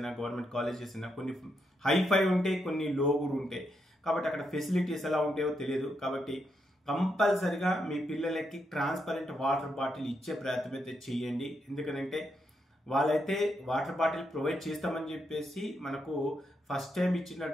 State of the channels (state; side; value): normal; both; correlation 0.81